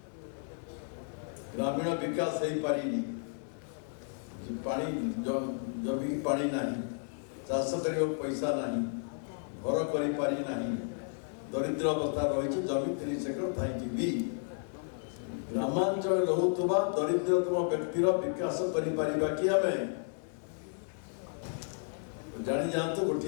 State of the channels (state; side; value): silent; right; 56 dB below the other